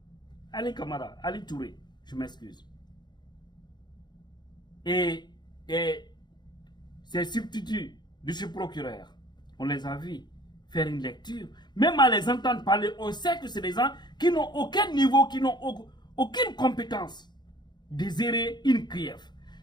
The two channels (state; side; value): late; right; 0.21 ms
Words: Ali Kamara, Ali Touré, je m'excuse. Et ces substituts de ce procureur, on les a vus faire une lecture. Même à les entendre parler, on sait que c'est des gens qui n'ont aucun niveau, qui n'ont aucune compétence de gérer une CRIEF.